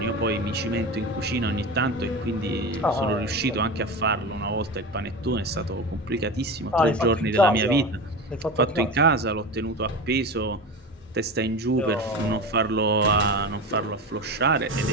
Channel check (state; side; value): normal; both; correlation 0.26